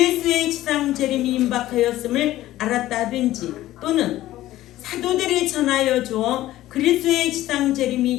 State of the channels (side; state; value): right; quieter; 15.1 dB